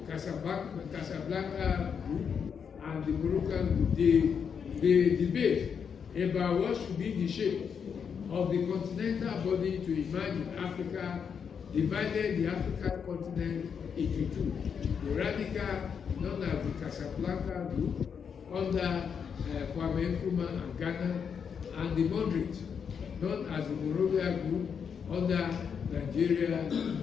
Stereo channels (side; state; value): right; quieter; 6.9 dB